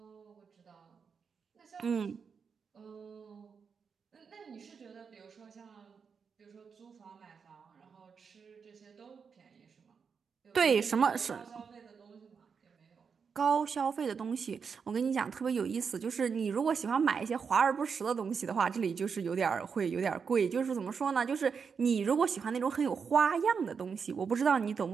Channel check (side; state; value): left; quieter; 6.0 dB